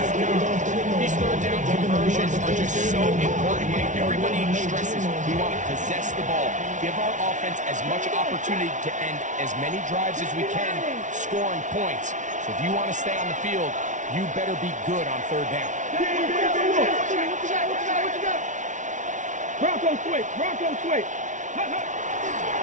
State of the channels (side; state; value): left; late; 0.37 ms